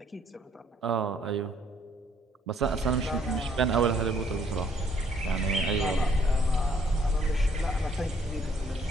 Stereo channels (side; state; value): both; normal; correlation 0.65